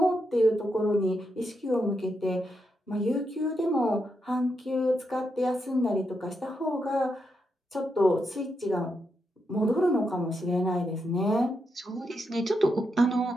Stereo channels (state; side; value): normal; both; correlation 0.83